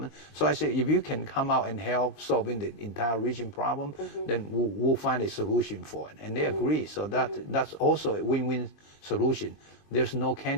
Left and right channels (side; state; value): right; late; 22 ms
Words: So I say, if you can come out and help solving the entire region problem, then we'll find a solution for it. And they agree. So that's also a win-win solution. There's no